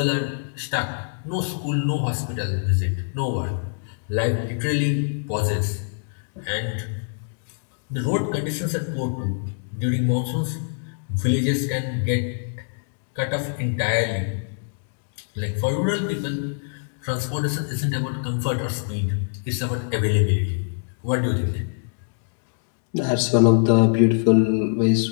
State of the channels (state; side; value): silent; right; digital silence